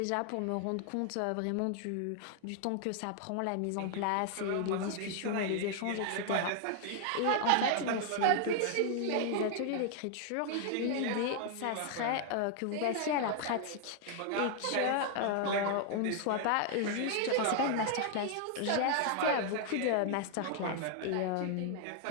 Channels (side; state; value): both; different; correlation 0.00